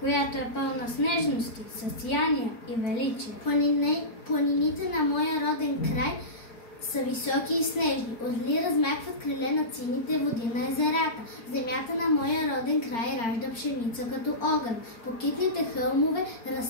е пълна с нежности, със сияния и величие. Планините на моя роден край са високи и снежни. Отли размахват криле над сините води на езерата. Земята на моя роден край ражда пшеница като огън. По китните хълмове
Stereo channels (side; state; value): right; late; 4.4 ms